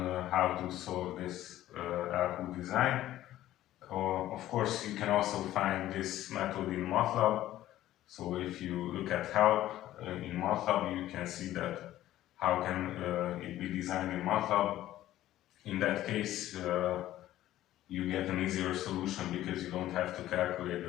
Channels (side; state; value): right; quieter; 14.0 dB